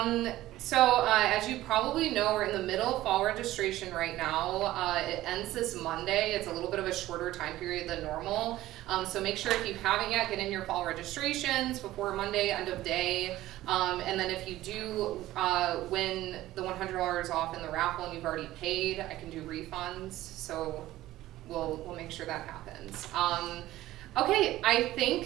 So as you probably know, we're in the middle of fall registration right now. It ends this Monday. It's a little bit of a shorter time period than normal. So make sure if you haven't yet, get in your fall registrations before Monday, end of day. And then if you do win the $100 off in the raffle and you've already paid, I can do refunds. So we'll make sure that happens. Okay, I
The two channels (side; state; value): left; quieter; 15.6 dB